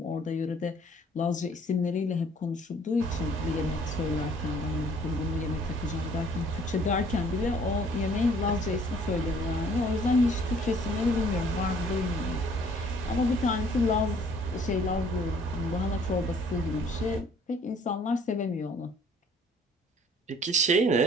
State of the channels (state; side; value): normal; both; correlation 0.58